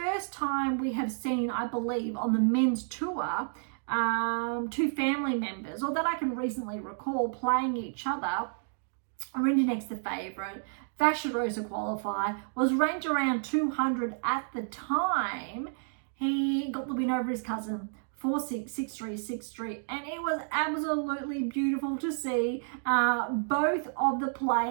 time we have seen, I believe, on the men's tour, 2 family members, or that I can recently recall, playing each other. Rinderknech's the favourite, Vachereau's a qualifier, was ranked around 200 at the time. He got the win over his cousin, 4-6, 6-3, 6-3, and it was absolutely beautiful to see both of the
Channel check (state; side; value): silent; left; digital silence